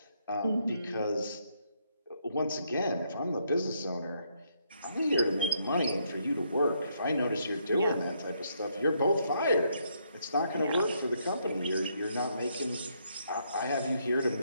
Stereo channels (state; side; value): inverted; both; correlation -0.74